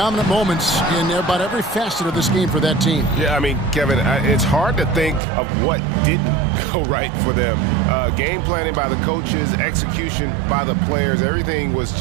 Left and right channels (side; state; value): left; drops out; at 5.2 s